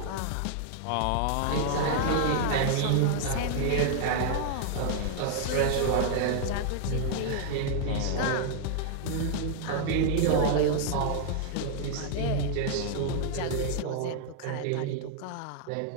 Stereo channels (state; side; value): different; both; correlation -0.01